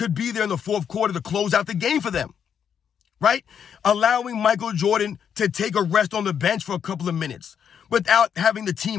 be there in the fourth quarter to close out the game for them, right? Allowing Michael Jordan to take a rest on the bench for a couple of minutes without having the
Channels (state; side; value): quieter; right; 8.0 dB